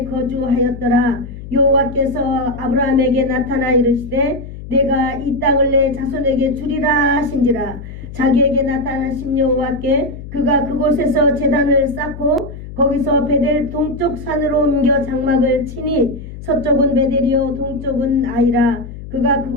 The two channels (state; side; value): noise; left; hum, 12 dB below the sound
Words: 거주하였더라. 여호와께서 아브라함에게 나타나 이르시되 내가 이 땅을 내 자손에게 주리라 하신지라. 자기에게 나타나신 여호와께 그가 그곳에서 제단을 쌓고 거기서 베델 동쪽 산으로 옮겨 장막을 치니 서쪽은 베델이요 동쪽은 아이라. 그가